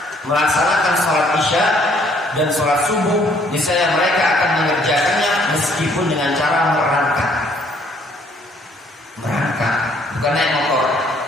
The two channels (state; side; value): normal; both; correlation 0.63